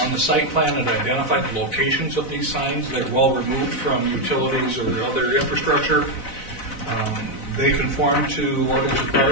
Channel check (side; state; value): right; late; 4.0 ms